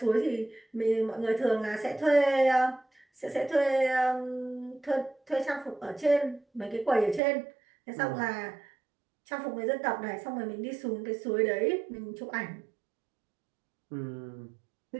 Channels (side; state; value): left; drops out; at 7.2 s